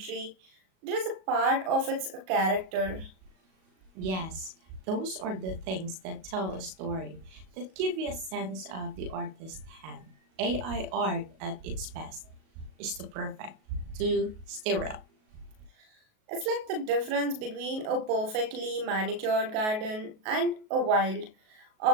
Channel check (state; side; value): late; left; 37 ms